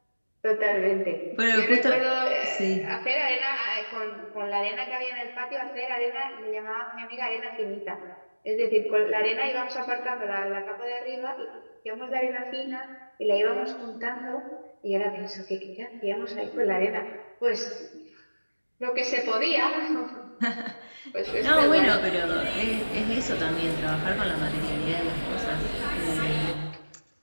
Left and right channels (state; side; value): inverted; both; correlation -1.00